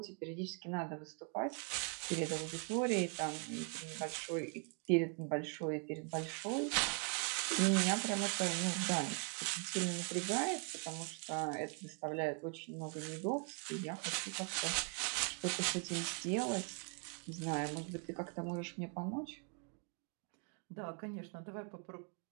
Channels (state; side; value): quieter; left; 36.8 dB